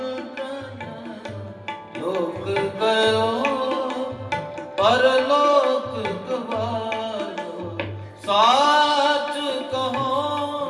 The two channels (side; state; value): both; identical; correlation 1.00